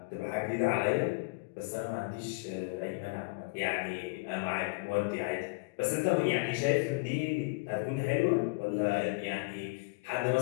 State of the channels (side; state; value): right; quieter; 28.1 dB